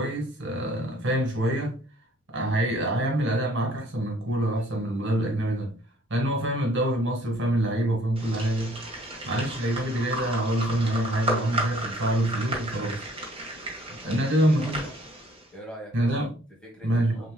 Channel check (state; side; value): normal; both; correlation 0.59